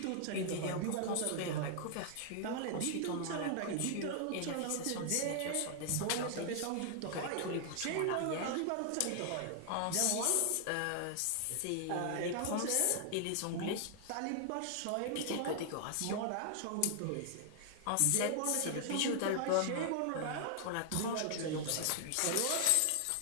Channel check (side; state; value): both; different; correlation 0.00